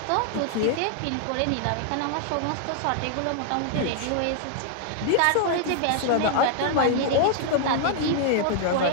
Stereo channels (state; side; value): different; both; correlation 0.00